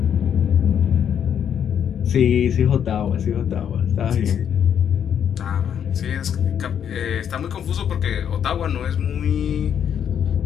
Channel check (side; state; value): right; quieter; 8.7 dB